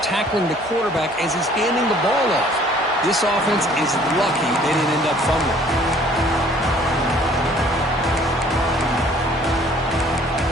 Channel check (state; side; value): normal; both; correlation 0.56